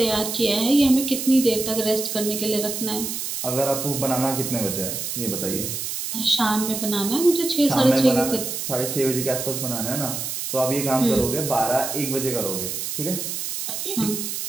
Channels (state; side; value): noise; right; hiss, 4 dB below the sound